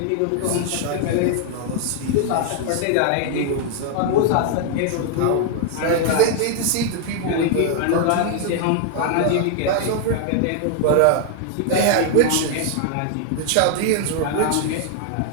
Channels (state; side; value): different; both; correlation 0.00